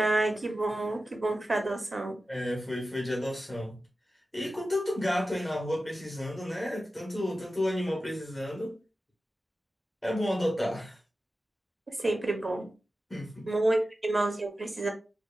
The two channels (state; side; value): normal; both; correlation 0.93